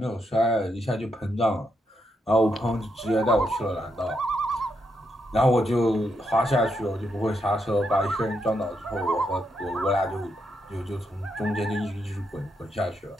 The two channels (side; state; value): both; normal; correlation 0.81